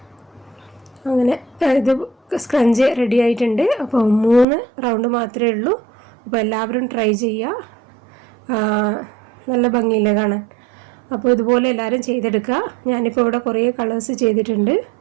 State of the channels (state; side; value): drops out; left; at 4.5 s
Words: അങ്ങനെ ഇത് സ്ക്രഞ്ച് റെഡി ആയിട്ടുണ്ട്. അപ്പോൾ 3 റൗണ്ട് മാത്രമേ ഉള്ളൂ. അപ്പോൾ എല്ലാവരും ട്രൈ ചെയ്യുക. നല്ല ഭംഗിയില്ല കാണാൻ. അപ്പോൾ ഇതുപോലെ എല്ലാവരും ചെയ്തെടുക്കുക. ഞാനിപ്പോൾ ഇവിടെ കുറേ കളേഴ്സ് ചെയ്തിട്ടുണ്ട്.